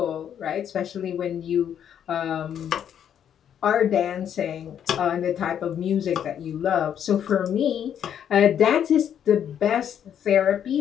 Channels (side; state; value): right; quieter; 9.2 dB